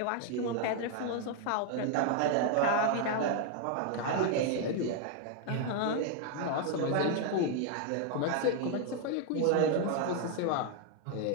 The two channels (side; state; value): both; different; correlation 0.00